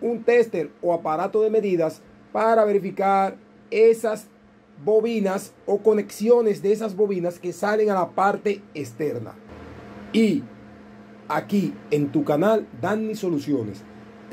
tester o aparato de medidas para verificar esas bobinas o conexiones de esas bobinas que salen a la parte externa. Y aquí en tu canal Danny Soluciones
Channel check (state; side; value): identical; both; correlation 1.00